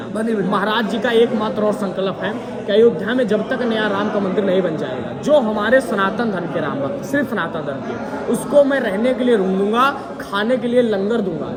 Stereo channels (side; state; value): both; identical; correlation 1.00